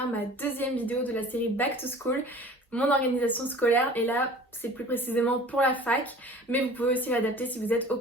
ma deuxième vidéo de la série Back to School, mon organisation scolaire. Et là, c'est plus précisément pour la fac, mais vous pouvez aussi l'adapter si vous êtes au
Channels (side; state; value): both; normal; correlation 0.44